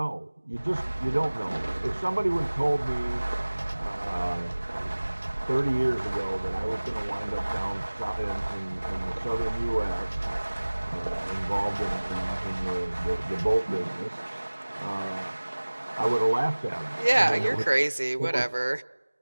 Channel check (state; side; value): inverted; both; correlation -1.00